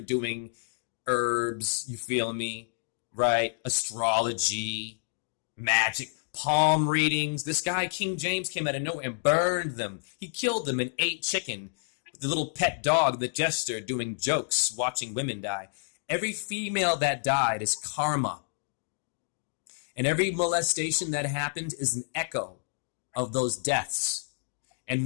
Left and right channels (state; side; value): silent; right; digital silence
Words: herbs, you feel me? Right? Astrology, magic, palm readings. This guy, King James, came out of nowhere and burned them. He killed them and ate chicken. The little pet dog, the jester, doing jokes, watching women die. Every female that died is karma. And every molestation that happened is an echo of those deaths.